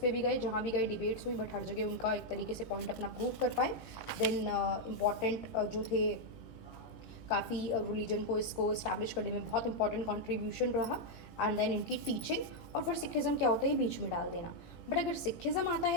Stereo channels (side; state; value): right; late; 18 ms